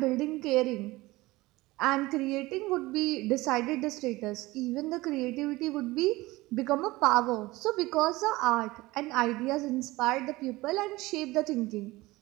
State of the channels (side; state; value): left; quieter; 20.0 dB